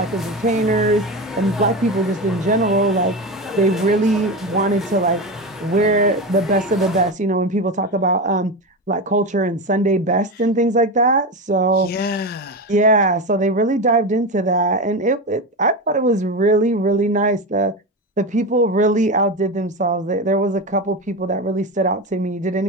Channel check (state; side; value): normal; both; correlation 0.19